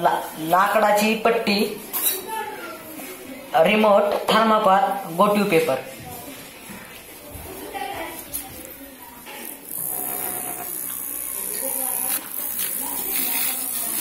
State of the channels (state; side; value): identical; both; correlation 1.00